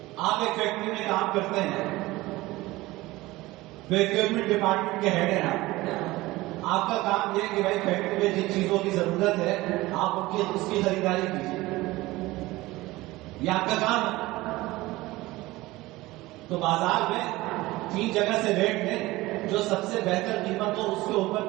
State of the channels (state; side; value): quieter; left; 19.3 dB